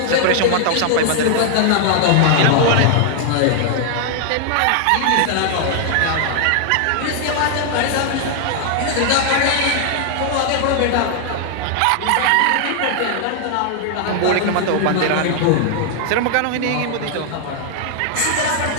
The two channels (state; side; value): different; both; correlation 0.00